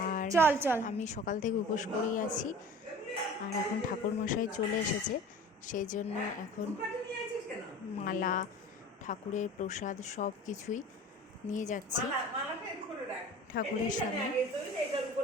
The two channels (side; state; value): both; normal; correlation 0.41